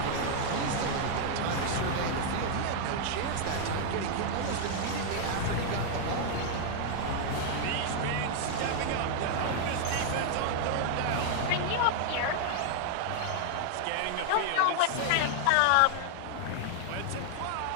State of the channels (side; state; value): both; different; correlation 0.00